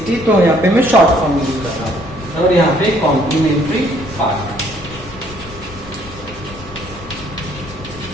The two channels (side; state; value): both; normal; correlation 0.63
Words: तो यहाँ पे मैं शॉर्ट फॉर्म यूज कर रहा हूं, और यहाँ पे कॉम्प्लीमेंट्री पार्ट।